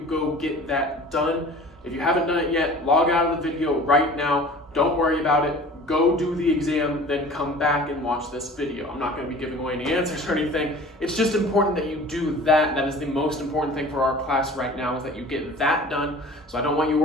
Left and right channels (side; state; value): both; normal; correlation 0.43